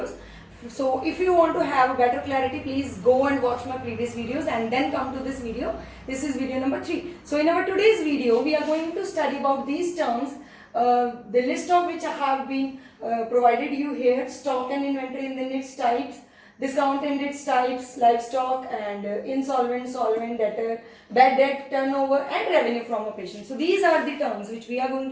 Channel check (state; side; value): identical; both; correlation 1.00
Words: So if you want to have a better clarity, please go and watch my previous videos and then come to this video. This is video number 3. So in our today's video, we are going to study about these terms, the list of which I have been provided you here: stock and inventory in its types, discount and its types, livestock and insolvent, solvent, debtor, bad debt, turnover and revenue from operations. So these are the terms which we are going